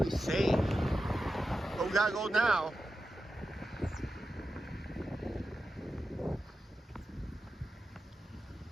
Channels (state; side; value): normal; both; correlation 0.91